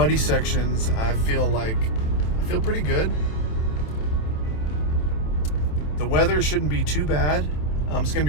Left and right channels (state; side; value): late; right; 27 ms